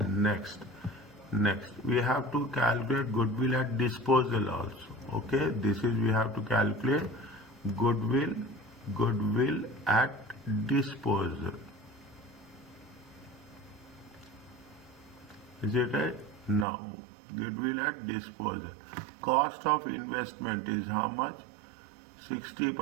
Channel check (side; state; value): left; drops out; at 16.7 s